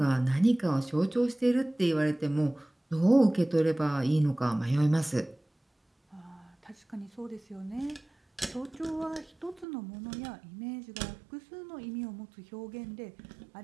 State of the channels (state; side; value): drops out; left; at 9.7 s